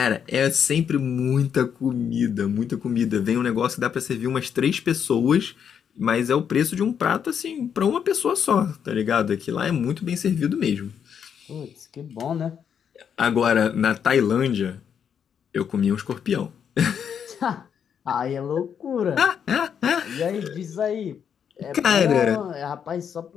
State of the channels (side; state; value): right; quieter; 7.8 dB